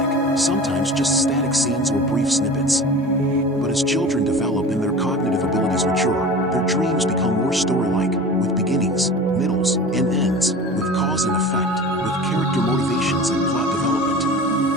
sometimes just static scenes or brief snippets. But as children develop and their cognitive abilities mature, their dreams become more story-like, with beginnings, middles, and ends, with cause and effect, with character motivations and plot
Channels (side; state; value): both; normal; correlation 0.37